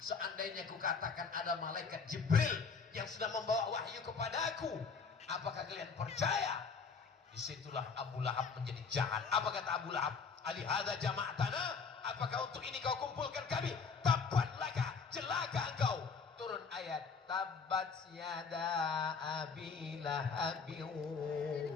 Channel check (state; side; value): quieter; right; 5.3 dB